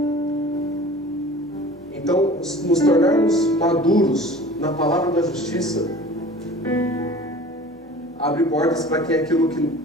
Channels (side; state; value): both; normal; correlation 0.43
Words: Então, nos tornarmos maduros na palavra da justiça abre portas para aquilo